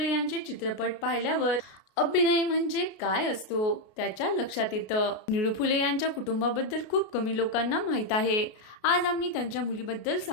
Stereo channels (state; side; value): late; right; 33 ms